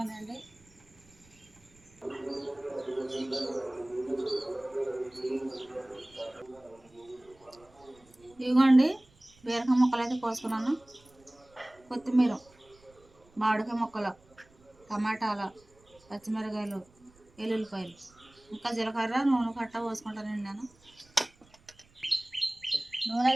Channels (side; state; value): right; noise; rumble, 29 dB below the sound